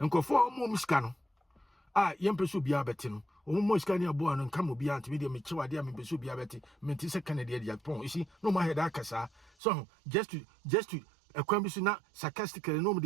go for more muscano. Young person be a betting. Almost can you born and come be anti media mature dear me be a betting, mentis a Canadian Japon. You see, no my head akasa. So just to a question not sarcastically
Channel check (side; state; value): left; drops out; at 9.5 s